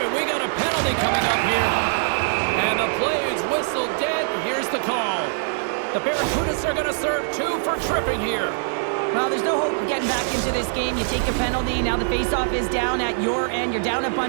and we got a penalty coming up here. And the play is whistled dead. Here's the call. The Barracudas are going to serve 2 for tripping here. Well, there's no hope of getting back into this game. You take a penalty. Now the faceoff is down at your end. You're down a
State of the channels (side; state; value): left; silent; digital silence